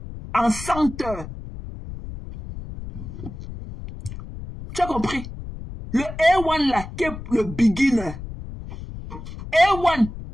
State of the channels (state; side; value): noise; left; rumble, 11 dB below the sound